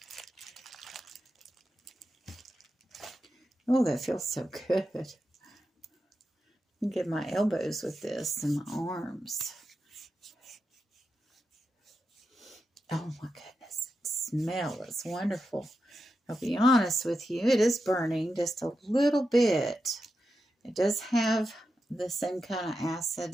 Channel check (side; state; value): both; normal; correlation 0.88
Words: Oh, that feels so good. I can get my elbows with this and my arms. Oh my goodness, the smell is wonderful. I'll be honest with you, it is burning just a little bit. It does have the same kind of